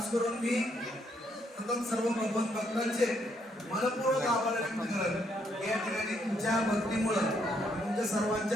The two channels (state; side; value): normal; both; correlation 0.73